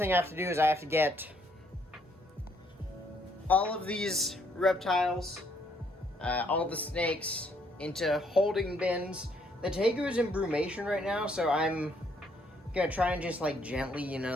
I have to do is I have to get all of these reptiles, all the snakes, into holding bins. The Tegu is in brumation right now, so I'm going to try and just gently,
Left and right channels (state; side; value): normal; both; correlation 0.69